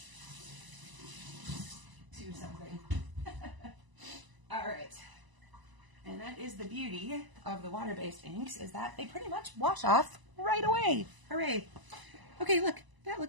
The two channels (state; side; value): late; left; 1.0 ms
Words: to something. All right. And that is the beauty of the water-based inks, is that they pretty much wash off right away. Hooray. Okay, look. That